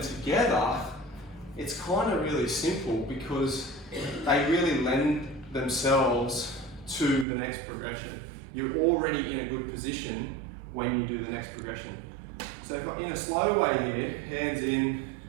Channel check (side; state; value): left; drops out; at 7.2 s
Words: together, it's kind of really simple because they really lend themselves to the next progression. You're already in a good position when you do the next progression. So in a slow way here, hands in,